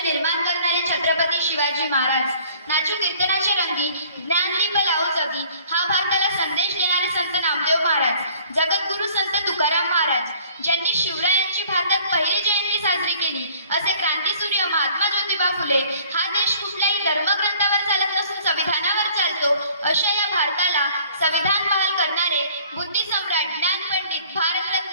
निर्माण करणारे छत्रपती शिवाजी महाराज, नाचू कीर्तनाचे रंगी ज्ञानदीप लावू जगी, हा भारताला संदेश देणारे संत नामदेव महाराज, जगद्गुरु संत तुकाराम महाराज, ज्यांनी शिवरायांची भारतात पहिली जयंती साजरी केली, असे क्रांतीसूर्य महात्मा ज्योतिबा फुले। हा देश कुठल्याही धर्मग्रंथावर चालत नसून संविधानावर चालतो, अशा या भारताला संविधान बहाल करणारे बुद्धिसम्राट, ज्ञानपंडित,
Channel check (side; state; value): both; inverted; correlation -0.54